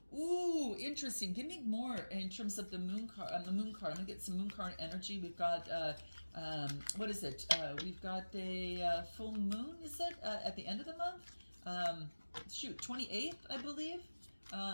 Ooh, interesting. Give me more in terms of the Moon card. I'm gonna get some Moon card energy. We've got what is it? We've got a full moon. Is it at the end of the month? Shoot, 28th, I believe.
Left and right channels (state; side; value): inverted; both; correlation -1.00